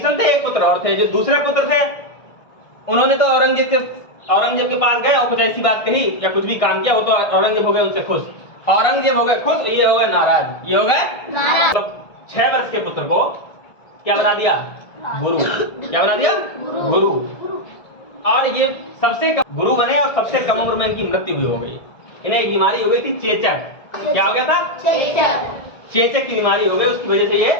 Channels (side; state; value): right; late; 1.7 ms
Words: थे, एक पुत्र और थे। जो दूसरे पुत्र थे उन्होंने तो औरंगजेब के पास गए और कुछ ऐसी बात कही या कुछ भी काम किया, वो तो औरंगजेब हो गए उनसे खुश, औरंगजेब हो गए खुश, ये हो गए नाराज, ये हो गए नाराज। तो 6 वर्ष के पुत्र को क्या बना दिया? गुरु। क्या बना दिया? गुरु। और ये सबसे कम गुरु बने और सबसे कम उम्र में इनकी मृत्यु भी हो गई। इन्हें एक बीमारी हो गई थी, चेचक। क्या हो गया था? चेचक की बीमारी हो गई, उसकी वजह से ये